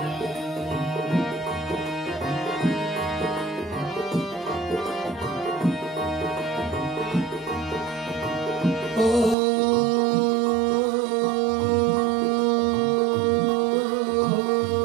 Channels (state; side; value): drops out; left; at 9.3 s